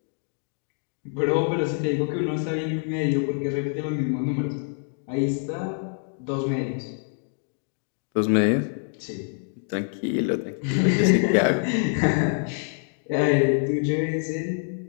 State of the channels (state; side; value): silent; right; 61 dB below the other